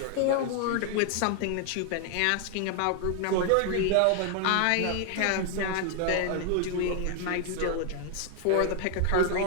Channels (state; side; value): different; both; correlation 0.00